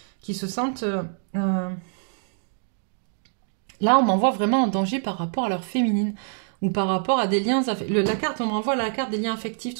qui se sentent... Là, on m'envoie vraiment en danger par rapport à leur féminine ou par rapport à des liens... La carte, on m'envoie la carte des liens affectifs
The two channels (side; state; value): left; silent; digital silence